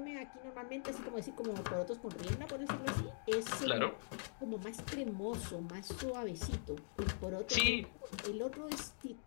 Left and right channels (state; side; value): silent; right; digital silence